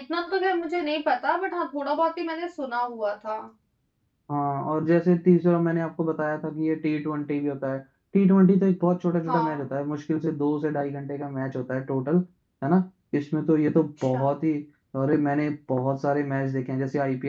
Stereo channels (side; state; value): both; identical; correlation 1.00